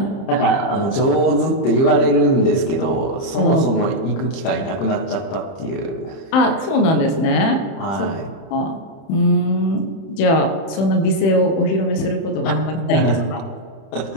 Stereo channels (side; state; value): right; late; 31 ms